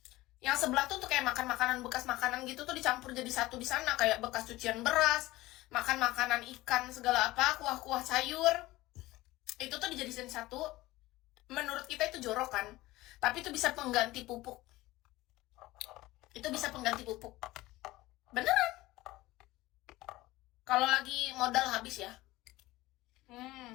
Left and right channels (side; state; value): right; quieter; 18.4 dB